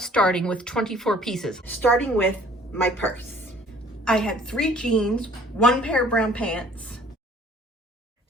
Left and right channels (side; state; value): both; normal; correlation 0.54